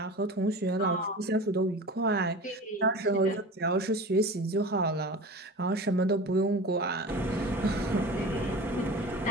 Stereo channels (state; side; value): normal; both; correlation 0.35